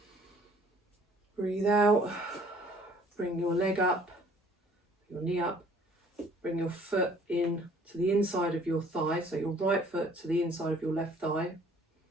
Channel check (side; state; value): both; normal; correlation 0.56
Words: breathe out, bring your leg up, your knee up, bring your foot in to the inside of your thigh, so your right foot to the inside of your left thigh.